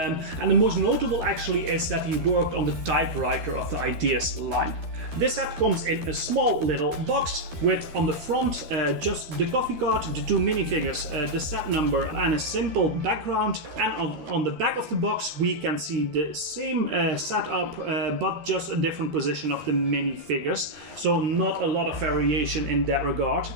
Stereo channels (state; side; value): late; left; 13 ms